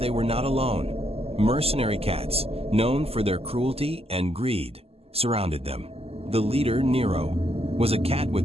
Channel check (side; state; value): left; late; 0.29 ms